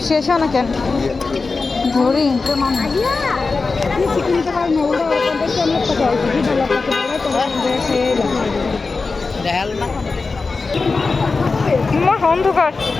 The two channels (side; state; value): right; quieter; 4.1 dB